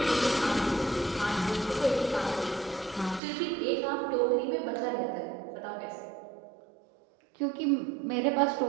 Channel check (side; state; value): left; drops out; at 3.2 s